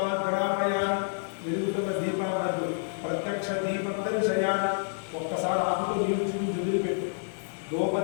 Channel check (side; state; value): right; silent; digital silence